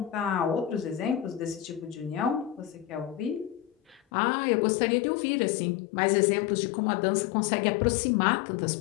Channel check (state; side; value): drops out; right; at 4.0 s